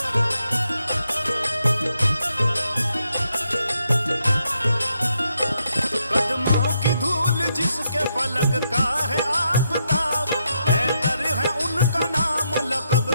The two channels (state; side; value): inverted; both; correlation -0.80